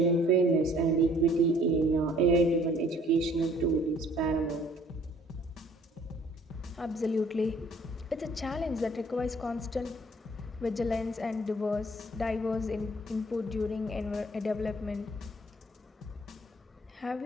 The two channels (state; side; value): normal; both; correlation 0.57